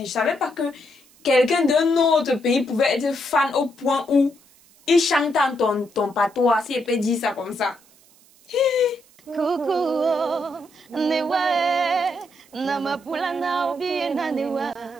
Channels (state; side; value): noise; right; hiss, 29 dB below the sound